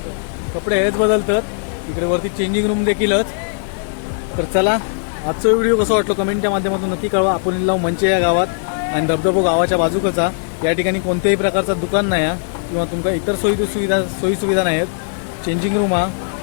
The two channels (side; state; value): right; silent; digital silence